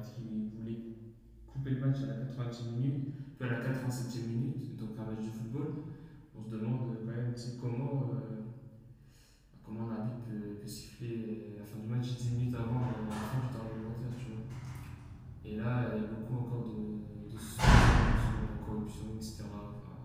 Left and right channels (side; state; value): both; identical; correlation 1.00